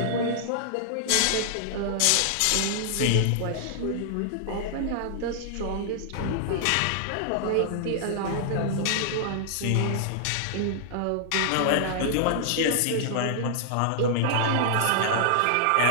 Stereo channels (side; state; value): both; different; correlation -0.01